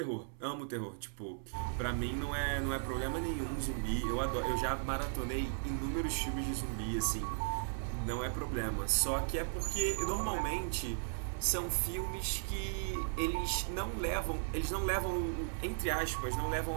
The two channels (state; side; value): silent; left; 53 dB below the other